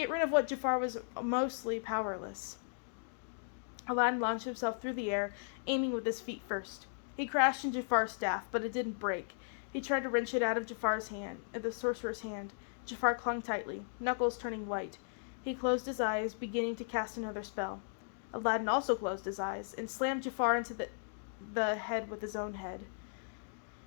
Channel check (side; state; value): right; silent; digital silence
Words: rid of what Jafar was mostly powerless. Aladdin launched himself through the air, aiming with his feet first. He crashed in Jafar's staff, but it didn't break. He tried to wrench it out of the sorcerer's hand. Jafar clung tightly, knuckles turning white. He closed his eyes, beginning to cast another spell. Aladdin also closed his eyes, and slammed Jafar into the head with his own head.